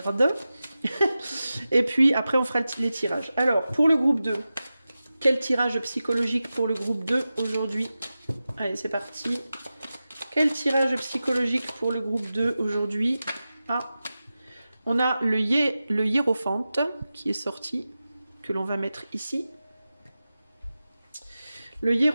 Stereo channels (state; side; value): inverted; both; correlation -0.94